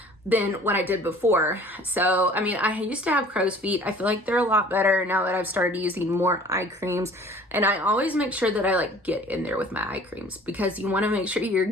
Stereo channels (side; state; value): both; normal; correlation 0.49